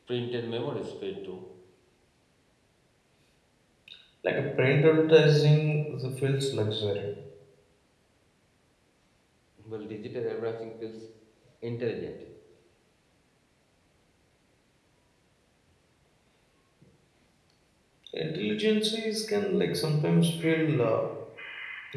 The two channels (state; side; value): identical; both; correlation 1.00